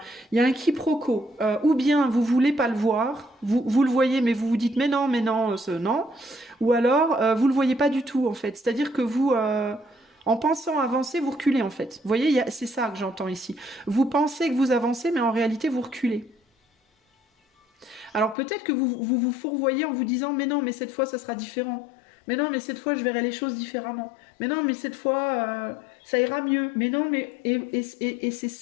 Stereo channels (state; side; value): drops out; right; at 18.4 s